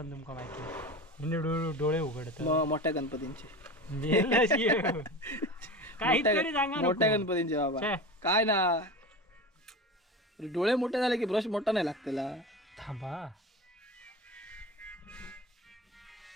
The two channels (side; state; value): both; normal; correlation 0.29